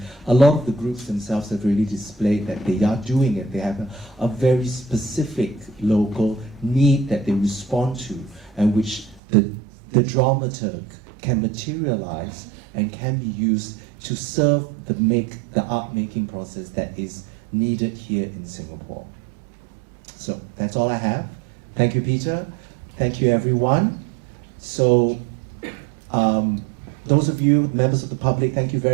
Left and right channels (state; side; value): drops out; left; at 9.2 s